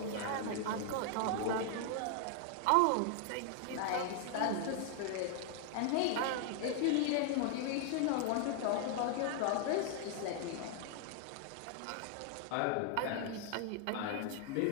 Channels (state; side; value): different; both; correlation 0.00